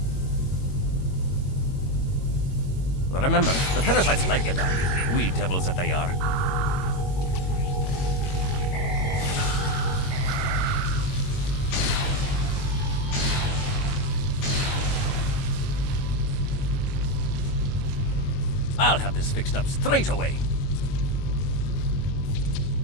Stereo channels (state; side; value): late; right; 22 ms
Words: Remember, the parasites like the dark. Wee devils that they are. I'll have this fixed up straight away.